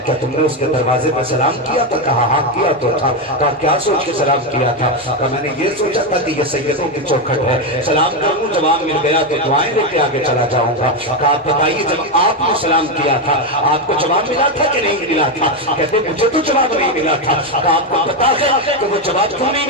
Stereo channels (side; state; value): both; normal; correlation 0.08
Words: کیا تم نے اس کے دروازے پہ سلام کیا تھا؟ کہا ہاں کیا تو تھا۔ کہا کیا سوچ کے سلام کیا تھا؟ کہا میں نے یہ سوچا تھا کہ یہ سیدوں کی چوکھٹ ہے، سلام کروں جواب مل گیا تو دعائیں لے کے آگے چلا جاؤں گا۔ کہا آپ بتائیے جب آپ نے سلام کیا تھا آپ کو جواب ملا تھا کہ نہیں ملا تھا؟ کہتے مجھے تو جواب نہیں ملا تھا۔ کہا آپ کو پتا ہے کہ وہ جواب کیوں نہیں